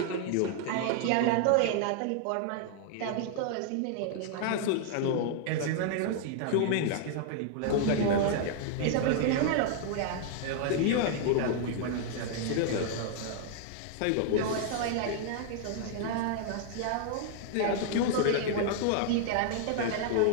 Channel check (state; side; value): different; both; correlation 0.00